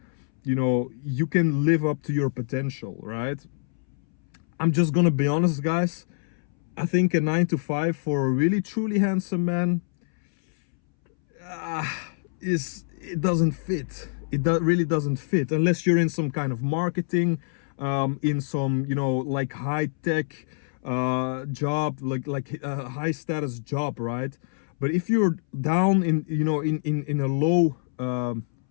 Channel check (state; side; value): silent; right; 61 dB below the other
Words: you can live up to your potential, right? I'm just gonna be honest, guys. I think a 9 to 5 for a really truly handsome man it doesn't fit. really doesn't fit unless you're in some kind of marketing, in some, you know, like high tech job, like a high status job, right? But if you're down in, you know, in a low